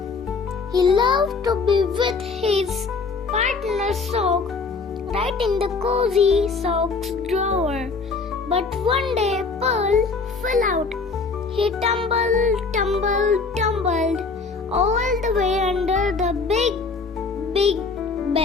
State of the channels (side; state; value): right; quieter; 4.5 dB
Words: He loved to be with his partner sock right in the cozy socks drawer. But one day Pearl fell out. He tumbled all the way under the big